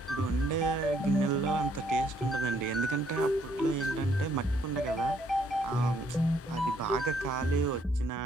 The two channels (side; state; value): both; normal; correlation 0.68